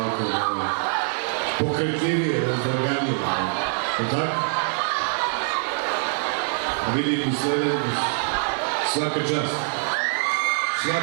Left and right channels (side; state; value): left; silent; digital silence